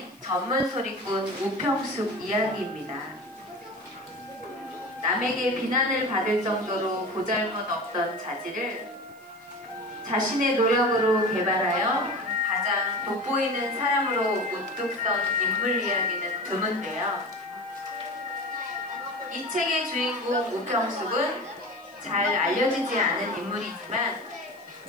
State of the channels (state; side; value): noise; right; hiss, 29 dB below the sound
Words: 전문 소리꾼 우평숙 이야기입니다. 남에게 비난을 받을 정도로 보잘것없던 자질을 자신의 노력으로 개발하여 가장 돋보이는 사람으로 우뚝 선 인물 이야기는 드문데요. 이 책의 주인공 우평숙은 잘 알려지지 않은 인물이지만